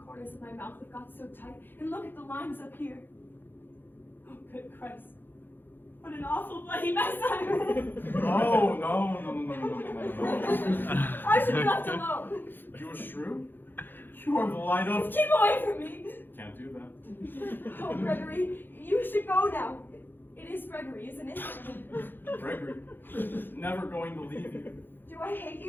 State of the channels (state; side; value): late; right; 0.096 ms